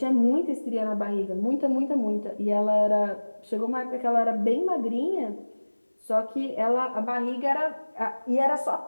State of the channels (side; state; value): both; inverted; correlation -1.00